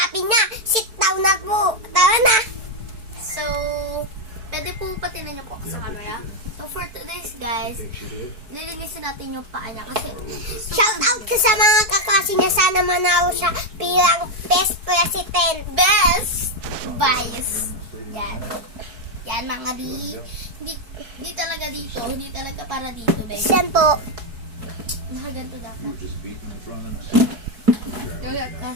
niya, sit down na po. Tara na. So, pwede po patinan niyo po sa camera. So, for today's guys, nilinisin natin yung paa niya kasi Shout out ka sa mga kaklase niya. Sana manalo siya bilang best president. best vice. Yan. Yan mga di. Hindi talaga dito. Hindi talaga para dito, guys. Yan po. Nakaganto dapat.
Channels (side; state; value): left; late; 4.7 ms